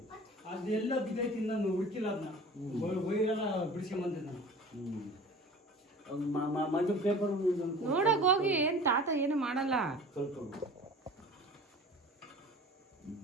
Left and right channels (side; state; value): both; normal; correlation 0.42